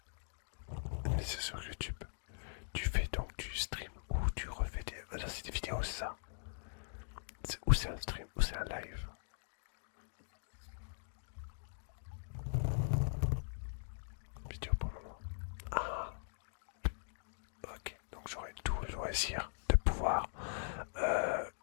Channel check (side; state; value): right; silent; digital silence